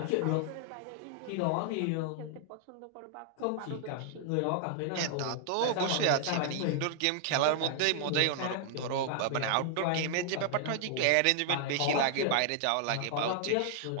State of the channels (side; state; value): both; different; correlation 0.00